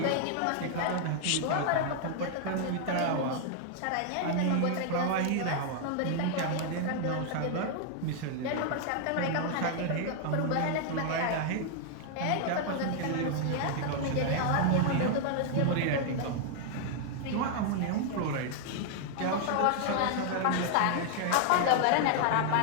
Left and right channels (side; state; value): both; different; correlation 0.00